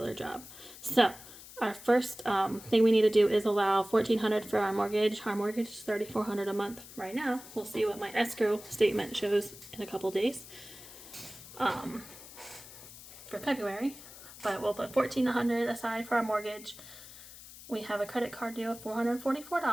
job. So our first thing we need to do is allow $1,400 for our mortgage. Our mortgage is $3,400 a month right now. We'll see what my escrow statement shows in a couple days for February, but we'll put $1,400 aside for our mortgage. We have a credit card due of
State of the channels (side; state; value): left; noise; hiss, 16 dB below the sound